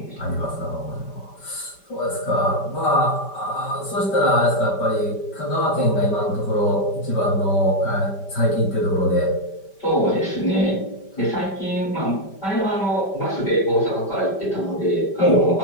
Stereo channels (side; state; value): right; late; 5.1 ms